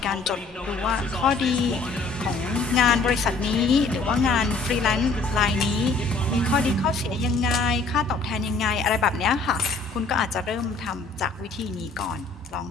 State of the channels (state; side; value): quieter; right; 3.8 dB